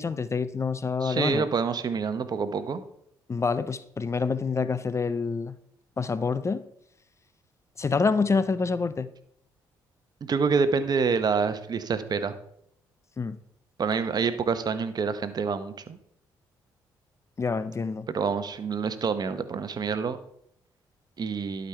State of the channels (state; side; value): normal; both; correlation 0.67